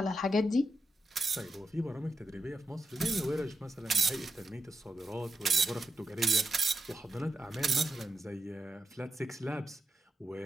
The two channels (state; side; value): normal; both; correlation 0.87